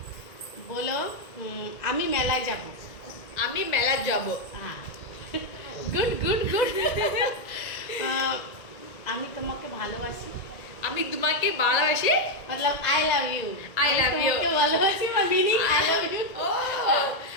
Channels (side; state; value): right; late; 2.0 ms